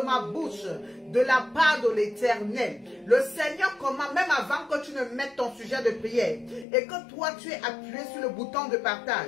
ma bouche de la part de l'Éternel. Le Seigneur commande, même avant que tu ne mettes ton sujet de prière, et que toi tu es appuyé sur le bouton de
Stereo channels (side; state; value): right; drops out; at 6.7 s